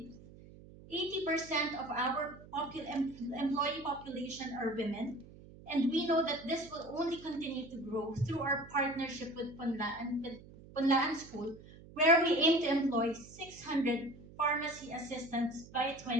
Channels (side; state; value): right; noise; hum, 19 dB below the sound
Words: 80% of our employee population are women, and we know that this will only continue to grow through our partnership with Punlaan School, where we aim to employ 600 pharmacy assistants by